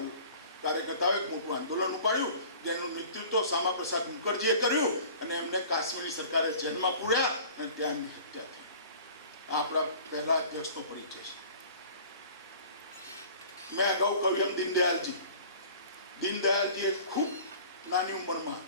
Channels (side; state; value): both; inverted; correlation -0.45